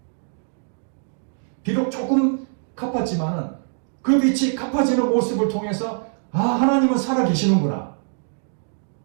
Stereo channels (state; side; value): silent; left; 63 dB below the other